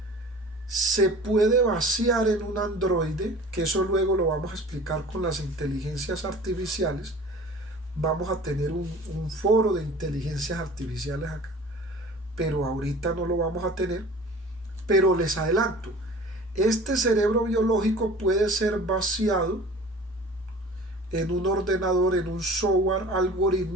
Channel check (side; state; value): both; normal; correlation 0.43